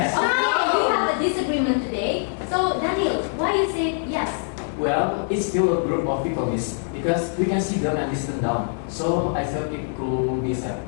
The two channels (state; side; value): silent; right; 63 dB below the other